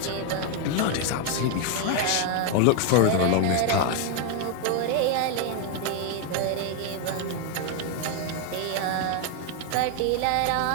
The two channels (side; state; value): both; different; correlation 0.01